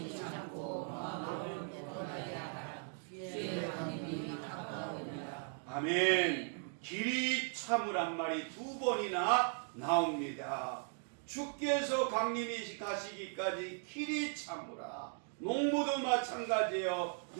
참고 마음을 굳건하게 하라. 주의 강림이 가까우니라. 아멘. 길이 참으란 말이 두 번이나 나옵니다. 주께서 강림이 가시기까지 길이 참으라. 농부도 마찬가지예요.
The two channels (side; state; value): left; silent; 52 dB below the other